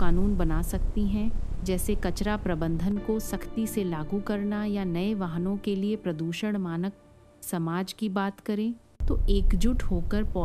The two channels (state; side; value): identical; both; correlation 1.00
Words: बना सकती हैं, जैसे कचरा प्रबंधन को सख्ती से लागू करना या नए वाहनों के लिए प्रदूषण मानक। समाज की बात करें तो एकजुट होकर